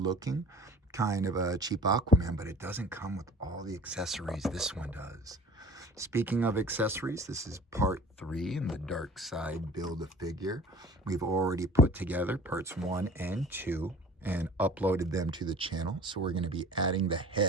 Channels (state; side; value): normal; both; correlation 0.45